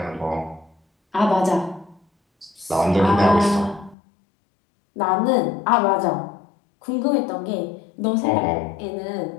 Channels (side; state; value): right; drops out; at 4.0 s